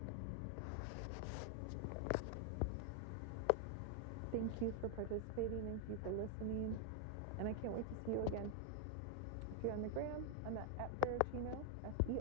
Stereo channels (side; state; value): both; different; correlation 0.00